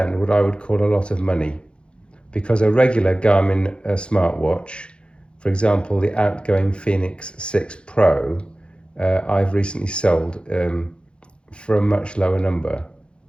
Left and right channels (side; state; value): right; late; 0.055 ms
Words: what I would call a lot of money, because a regular Garmin smartwatch, for example, the outgoing Phoenix 6 Pro, I've recently sold for a much lower number